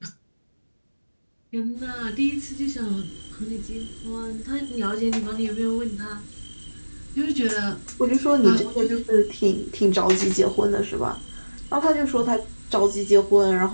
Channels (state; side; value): inverted; both; correlation -1.00